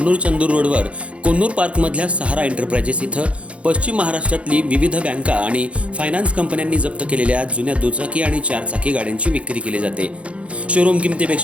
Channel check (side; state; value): left; late; 0.062 ms